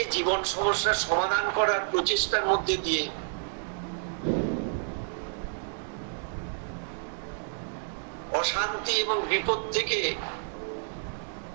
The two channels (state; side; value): silent; left; digital silence